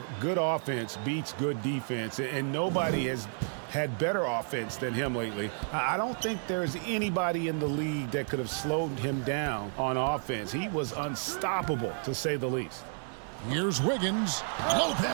good offense beats good defense, and nobody has had better offense than him lately. I don't think there's anybody in the league that could have slowed him down on offense. He was unstoppable, to say the least. Here's Wiggins.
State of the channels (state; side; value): silent; left; 57 dB below the other